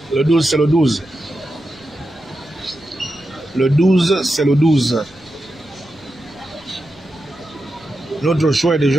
Le 12, c'est le 12. Le 12, c'est le 12. Notre choix est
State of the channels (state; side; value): noise; right; rumble, 30 dB below the sound